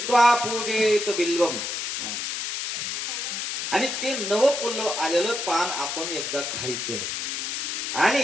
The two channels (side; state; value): left; noise; hiss, 3 dB below the sound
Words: पूजेत बिल्वम. आणि ते नवपल्लव आलेलं पान आपण एकदा खायचंय.